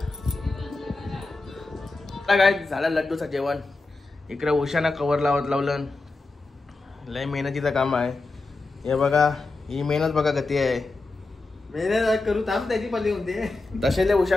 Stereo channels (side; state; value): right; quieter; 3.4 dB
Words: काय झालं लड्डूचं जेवण इकडे उशाना कवर लावलं लय मेहनतीचं काम आहे हे बघा ही मेहनत बघा गती आहे मेहनत करू थांब त्याची पल्ली होते तसे लय